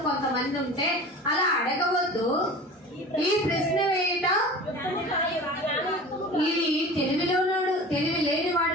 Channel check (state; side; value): normal; both; correlation 0.37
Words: కొంతమంది ఉంటే అలా అడగవద్దు. ఈ ప్రశ్న వేయట ఇది తెలివి